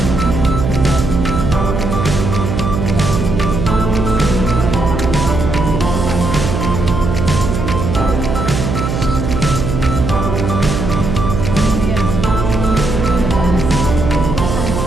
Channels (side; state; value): right; noise; hum, 2 dB below the sound